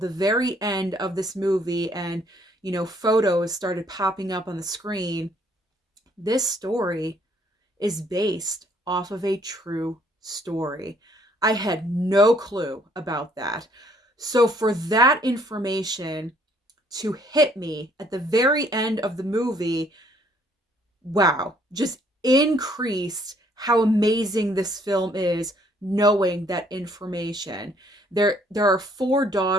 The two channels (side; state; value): both; normal; correlation 0.64